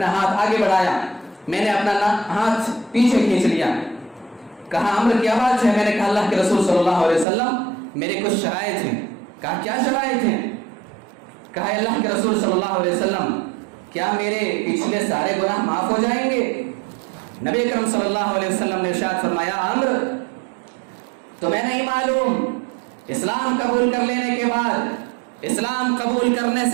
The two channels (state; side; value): drops out; left; at 7.2 s